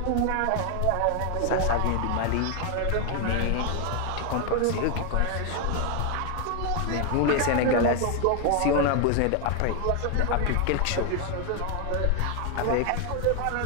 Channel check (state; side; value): different; both; correlation 0.01